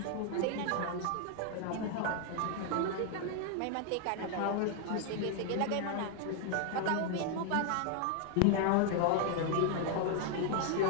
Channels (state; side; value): different; both; correlation 0.00